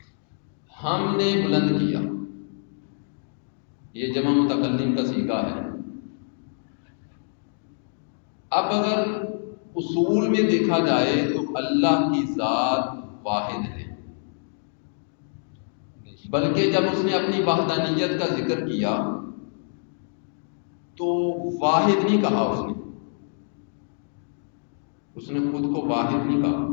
ہم نے بلند کیا۔ یہ جمع متکلم کا صیغہ ہے۔ اب اگر اصول میں دیکھا جائے تو اللہ کی ذات واحد ہے، بلکہ جب اس نے اپنی وحدانیت کا ذکر کیا تو واحد نہیں کہا، اس نے خود کو واحد نہیں کہا،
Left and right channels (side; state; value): right; silent; digital silence